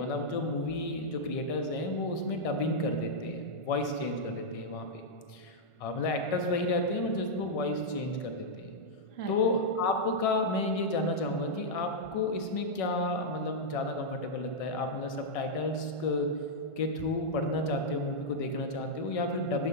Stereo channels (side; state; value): right; late; 1.6 ms